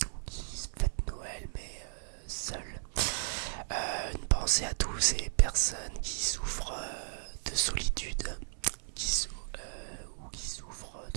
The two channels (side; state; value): left; silent; digital silence